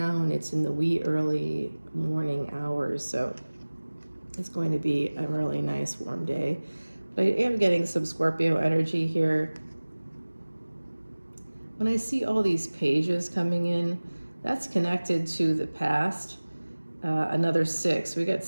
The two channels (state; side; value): inverted; both; correlation -1.00